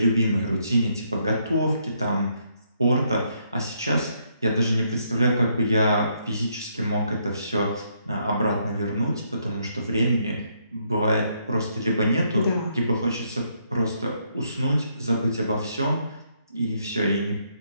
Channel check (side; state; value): both; inverted; correlation -0.73